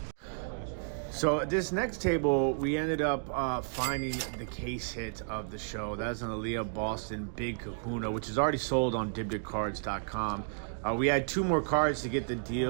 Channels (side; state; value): left; silent; digital silence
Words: So this next table, we ended up finding the case hit of the show. That's an Aaliyah Boston Big Kahuna, which is already sold on dibditcards.com. We had two more cards to get the